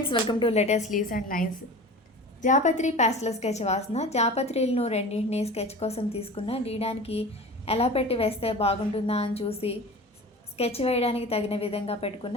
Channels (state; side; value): normal; both; correlation 0.36